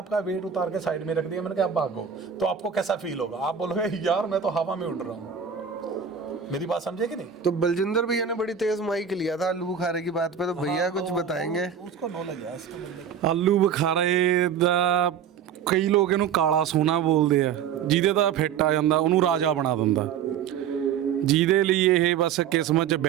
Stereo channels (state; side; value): quieter; left; 7.8 dB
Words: वेट उतार के साइड में रख दिया, मैंने कहा आप भागो, तो आपको कैसा फील होगा? आप बोलोगे यार मैं तो हवा में उड़ रहा हूँ। मेरी बात समझे कि नहीं? तो बलजिंदर भैया ने बड़ी तेज माइक लिया था आलू बुखारे की बात पे, तो भैया कुछ बताएंगे? उसको नॉलेज है इसको बंदे। ਆਲੂ ਬੁਖਾਰੇ ਦਾ ਕਈ ਲੋਕ ਇਹਨੂੰ ਕਾਲਾ ਸੋਨਾ ਬੋਲਦੇ ਆ, ਜਿਹਦੇ ਦਾ ਫਿੱਟ ਆ ਜਾਂਦਾ ਉਹਨੂੰ ਰਾਜਾ ਬਣਾ ਦਿੰਦਾ। ਜਿਹਦੇ ਲਈ ਇਹ ਬਸ ਕਿਸਮਤ 'ਚ